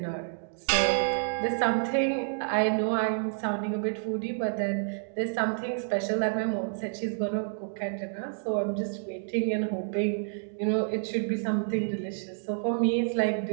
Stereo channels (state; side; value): silent; left; digital silence